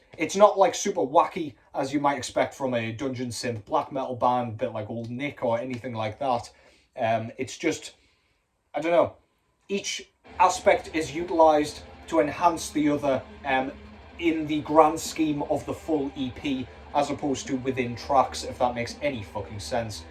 it's not like super wacky as you might expect from a dungeon synth black metal band, a bit like Old Nick or anything like that. It's just, I don't know, each aspect is utilised to enhance the other in the grand scheme of the full EP, as opposed to within tracks, if that makes any fucking sense.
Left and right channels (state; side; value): identical; both; correlation 1.00